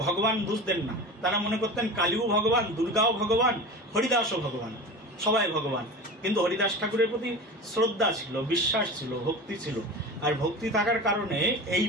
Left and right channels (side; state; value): both; normal; correlation 0.31